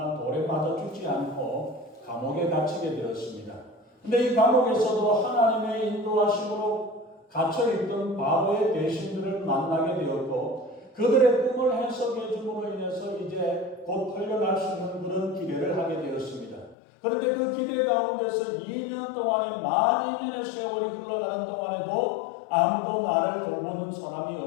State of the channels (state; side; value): drops out; right; at 16.8 s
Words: 돌에 맞아 죽지 않고 감옥에 갇히게 되었습니다. 근데 이 감옥에서도 하나님의 인도하심으로 갇혀있던 바로의 대신들을 만나게 되었고, 그들의 꿈을 해석해 줌으로 인해서 이제 곧 풀려날 수 있는 그런 기대를 하게 되었습니다. 그런데 그 기대 가운데서 2년 동안에 만 2년의 세월이 흘러가는 동안에도 아무도 나를 돌보는 사람이